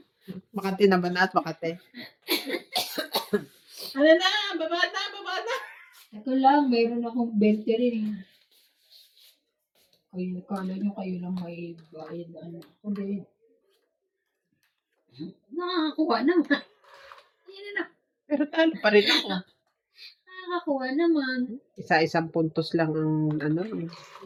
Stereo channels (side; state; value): both; identical; correlation 1.00